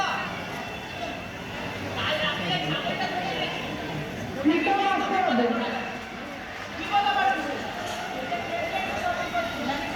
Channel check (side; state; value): both; identical; correlation 1.00